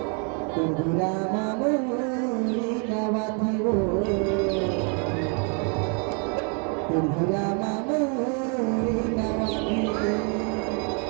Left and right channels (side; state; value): left; quieter; 38.5 dB